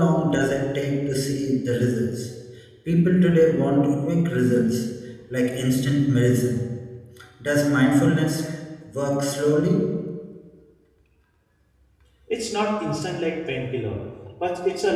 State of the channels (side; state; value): both; identical; correlation 1.00